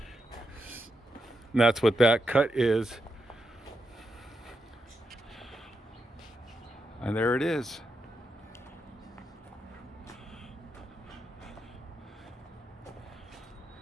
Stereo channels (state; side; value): normal; both; correlation 0.85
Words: And that's what that cut is. And there it is.